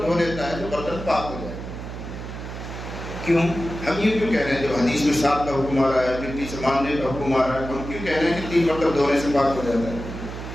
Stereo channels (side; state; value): right; noise; hum, 9 dB below the sound